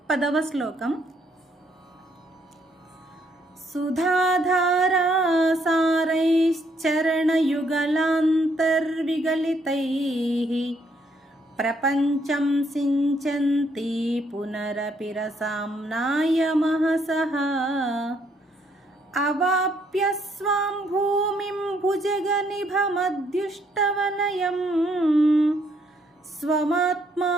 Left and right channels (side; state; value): both; normal; correlation 0.70